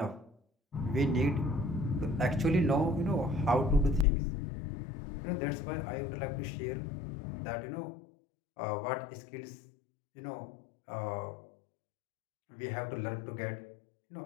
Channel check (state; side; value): drops out; right; at 4.0 s